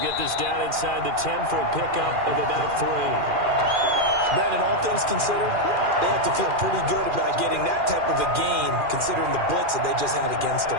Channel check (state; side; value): late; left; 2.4 ms